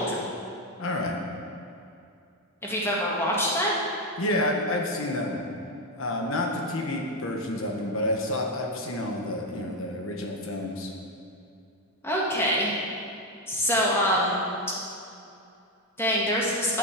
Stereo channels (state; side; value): normal; both; correlation 0.07